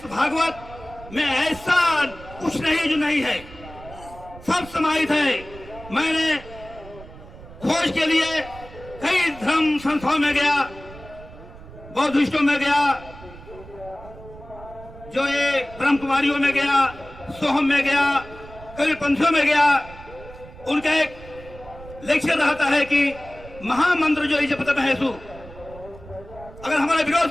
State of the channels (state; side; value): noise; right; rumble, 18 dB below the sound